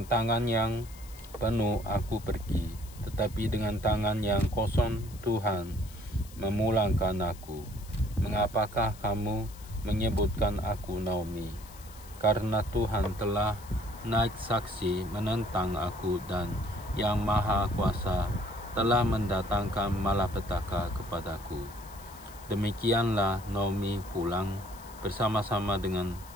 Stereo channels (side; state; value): left; noise; hiss, 20 dB below the sound